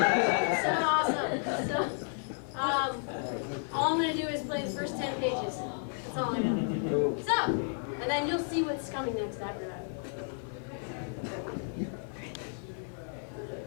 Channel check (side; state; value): right; silent; 56 dB below the other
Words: awesome. So, all I'm gonna do is play the first 10 pages. That's all I know. So, and then you'll see what's coming next after that.